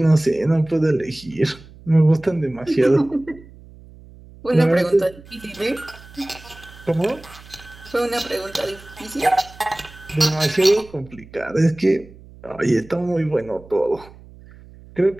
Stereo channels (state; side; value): noise; right; hum, 21 dB below the sound